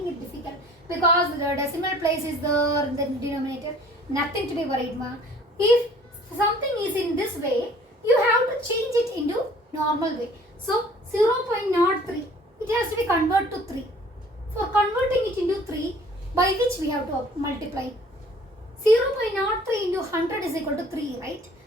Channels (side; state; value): both; normal; correlation 0.53